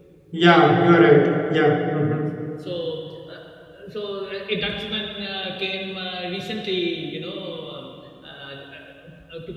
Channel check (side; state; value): both; identical; correlation 1.00